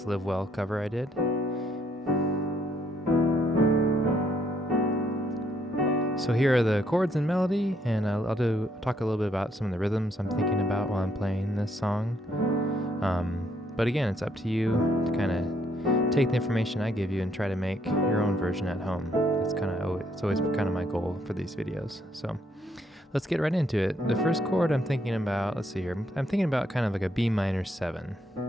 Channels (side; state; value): both; normal; correlation 0.71